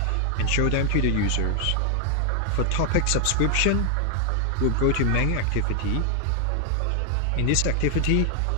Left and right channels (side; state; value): both; different; correlation 0.00